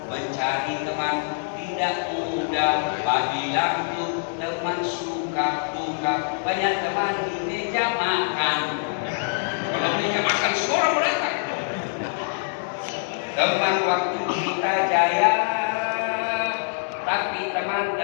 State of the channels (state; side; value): silent; right; 62 dB below the other